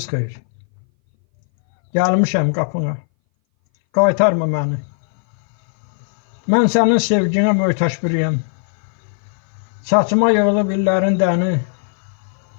xeyir. Gəlmişəm qapına. Qaytarma məni. Mən sənin sevginə möhtaç biriyəm. Saçıma yığılıb illərin dəni.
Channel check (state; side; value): silent; right; 60 dB below the other